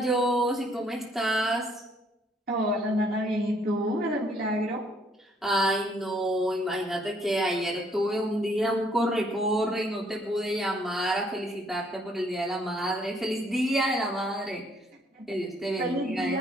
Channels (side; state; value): both; normal; correlation 0.66